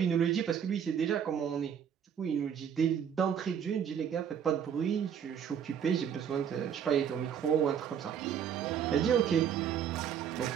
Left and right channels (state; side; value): quieter; left; 8.3 dB